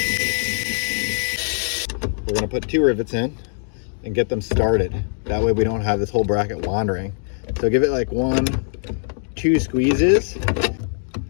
We're going to put 2 rivets in and get them started. That way we don't have this whole bracket wandering. So give it like 1, 2 squeezes.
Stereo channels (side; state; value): right; silent; 63 dB below the other